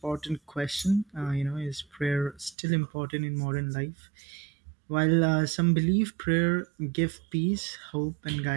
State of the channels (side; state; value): left; drops out; at 2.6 s